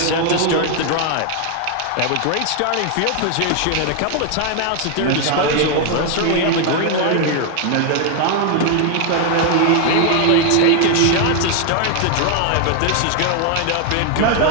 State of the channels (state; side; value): different; both; correlation 0.00